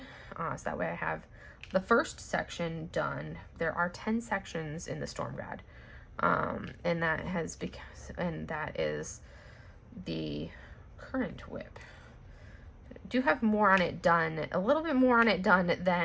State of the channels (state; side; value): identical; both; correlation 1.00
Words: So that way I have the first section done. There are 10 sections in the Storm God. And that is the current WIP. do have more on it done, a little bit more on it done